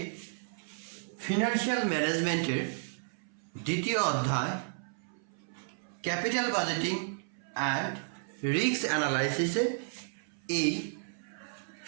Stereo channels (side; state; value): left; silent; 56 dB below the other